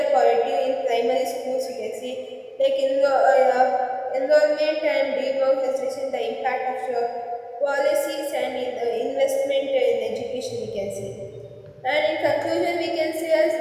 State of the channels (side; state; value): both; identical; correlation 1.00